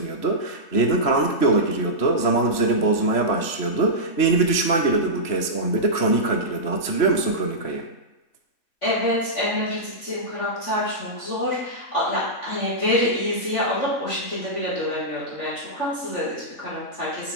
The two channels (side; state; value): right; late; 3.1 ms